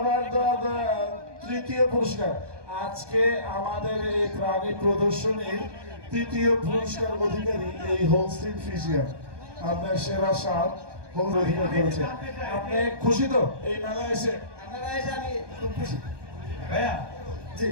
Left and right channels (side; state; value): left; late; 1.2 ms